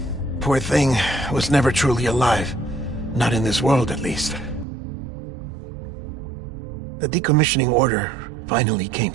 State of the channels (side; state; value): left; drops out; at 4.7 s